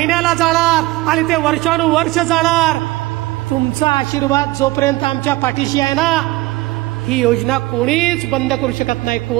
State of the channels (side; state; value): left; quieter; 19.3 dB